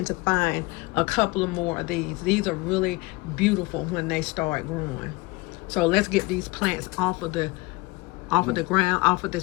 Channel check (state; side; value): quieter; right; 23.6 dB